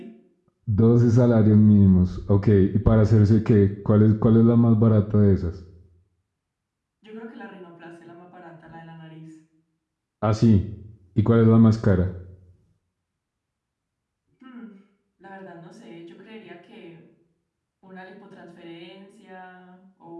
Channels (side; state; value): both; identical; correlation 1.00